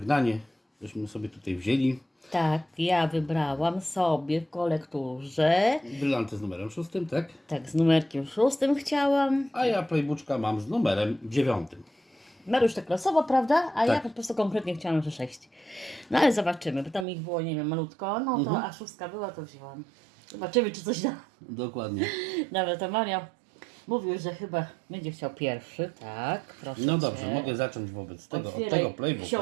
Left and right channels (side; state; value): left; drops out; at 17.1 s